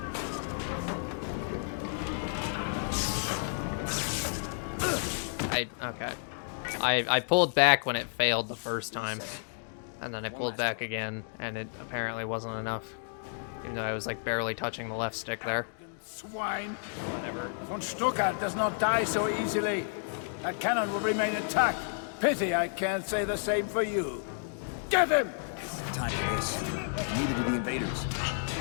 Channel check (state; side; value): silent; right; digital silence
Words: Okay. I pulled back when it failed the first time. And then I pulled back again, and it apparently wasn't enough. Even though I was like barely touching the left stick there. Swine. Whatever. Von Stuttgart does not die so easily. That cannon will remain intact. Pity I can't say the same for you. Get him! Time for this. Neither do the invaders.